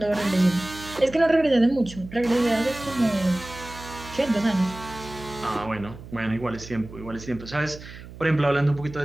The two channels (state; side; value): noise; right; hum, 15 dB below the sound